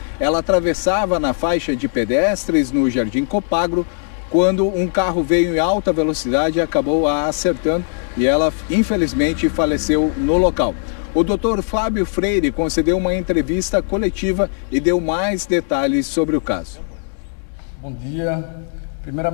Ela atravessava na faixa de pedestres no Jardim Copagro quando um carro veio em alta velocidade e acabou a acertando e ela infelizmente faleceu no local. O Dr. Fábio Freire concedeu uma entrevista coletiva e deu mais detalhes sobre o caso. Bom dia.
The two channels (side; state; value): right; silent; 67 dB below the other